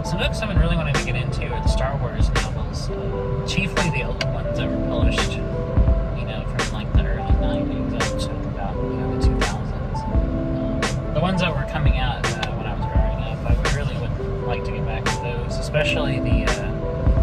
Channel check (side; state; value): both; identical; correlation 1.00